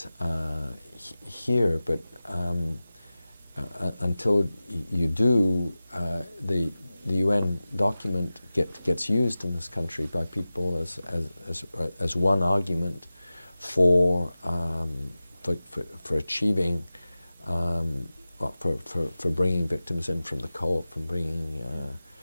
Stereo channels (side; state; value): both; inverted; correlation -0.96